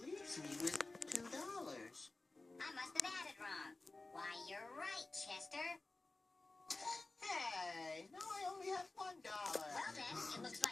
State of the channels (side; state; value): right; quieter; 3.2 dB